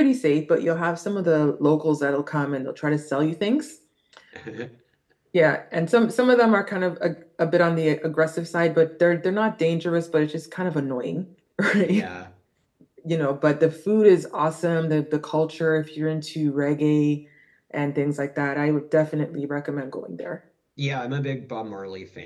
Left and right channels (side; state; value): both; identical; correlation 1.00